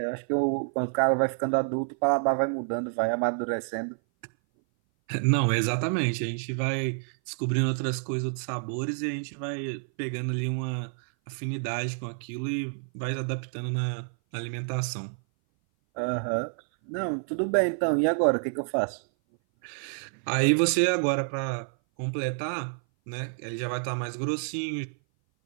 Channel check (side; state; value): left; silent; 57 dB below the other